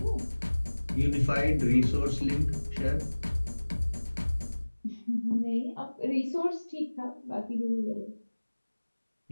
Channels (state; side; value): inverted; both; correlation -1.00